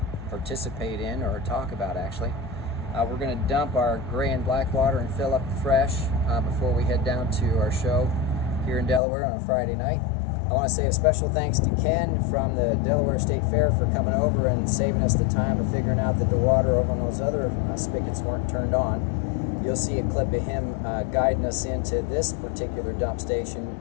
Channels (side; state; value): right; drops out; at 9.0 s